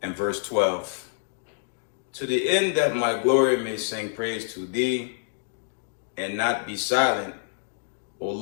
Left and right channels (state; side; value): silent; right; digital silence